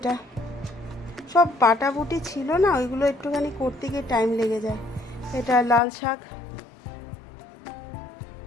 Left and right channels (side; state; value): right; drops out; at 5.8 s